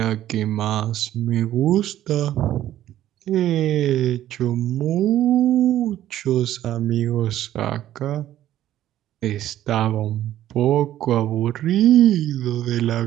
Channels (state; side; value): quieter; left; 12.8 dB